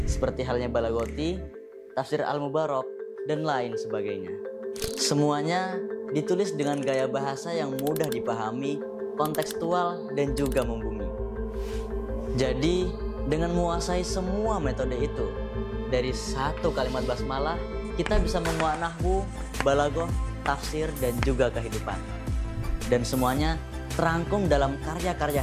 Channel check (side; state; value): both; identical; correlation 1.00